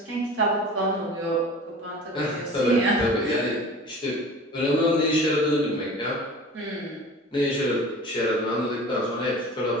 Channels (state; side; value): normal; both; correlation 0.40